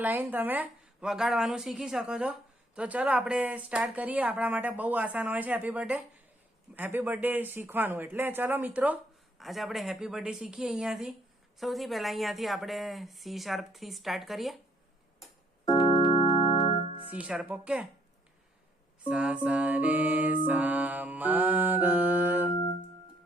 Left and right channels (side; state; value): both; normal; correlation 0.67